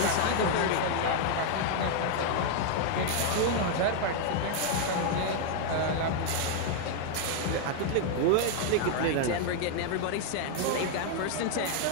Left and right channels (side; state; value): both; different; correlation 0.00